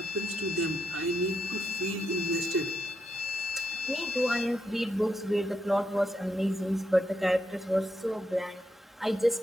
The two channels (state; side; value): normal; both; correlation 0.82